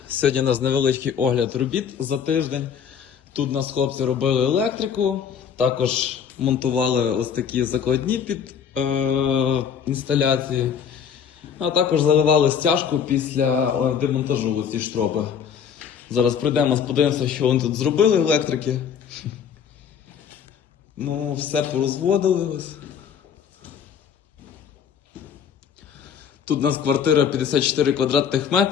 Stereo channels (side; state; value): right; quieter; 7.7 dB